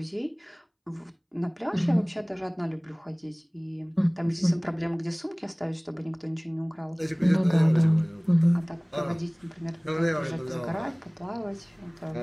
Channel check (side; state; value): both; identical; correlation 1.00